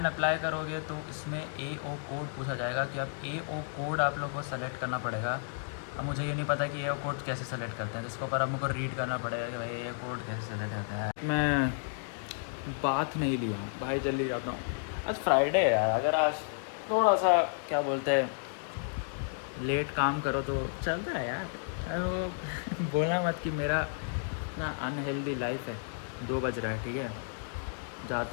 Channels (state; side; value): silent; right; digital silence